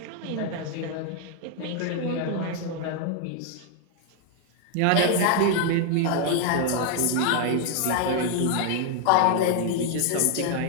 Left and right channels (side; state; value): both; different; correlation 0.00